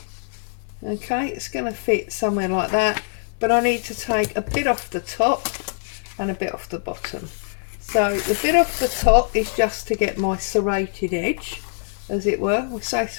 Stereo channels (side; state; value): right; silent; digital silence